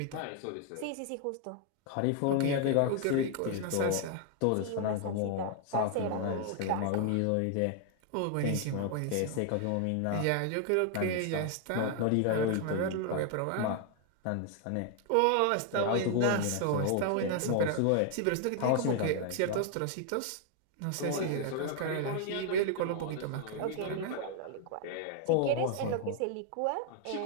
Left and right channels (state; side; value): different; both; correlation 0.00